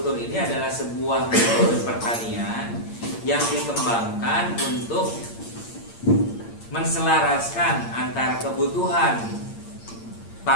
ini adalah sebuah metode pertanian yang dikembangkan untuk menselaraskan antara kebutuhan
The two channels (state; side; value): late; right; 8.7 ms